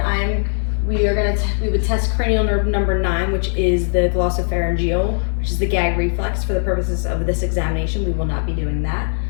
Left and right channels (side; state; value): right; silent; 61 dB below the other